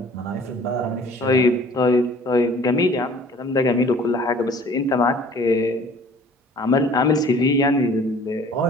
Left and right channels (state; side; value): normal; both; correlation 0.50